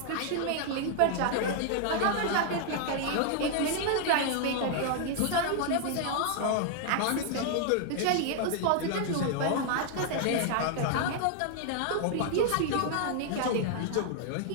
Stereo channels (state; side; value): different; both; correlation 0.00